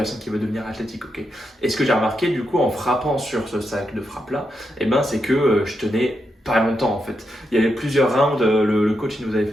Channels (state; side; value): normal; both; correlation 0.84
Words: qui veulent devenir athlétiques. Ok. Et ce que j'ai remarqué du coup en frappant sur ce sac de frappe là, c'est que je tenais pas longtemps en fait. Il y avait plusieurs rounds, le coach il nous avait